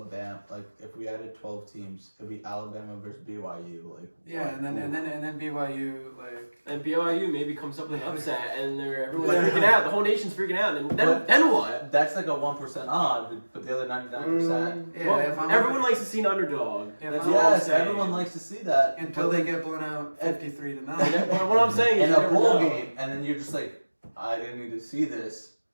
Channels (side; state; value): both; inverted; correlation -1.00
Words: like if we added 12 teams, it'd be Alabama versus BYU, like. Yeah, and then BYU, like, And BYU maybe comes up with an upset, and everyone's But- freaking out. The whole nation's freaking out. And But- then what? That's like a 1% odd, but the other 99%. yeah, Well, if I'm everyone likes to see an underdog. Yeah, That's if all I'm Yes, saying. everyone likes to see that. until but they then get blown out 53 to 9. What I'm saying is in you a never bowl know. game, and then you're just like, I didn't need to see this.